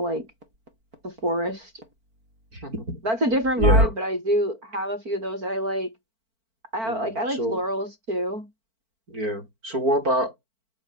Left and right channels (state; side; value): late; left; 4.5 ms